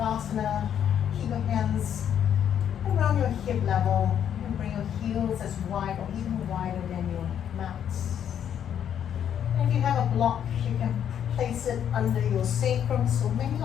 keep your hands around your hip level. You can bring your heels as wide or even wider than your mat. And if you have a block, you can place it under your sacrum. So many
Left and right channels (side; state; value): right; quieter; 9.2 dB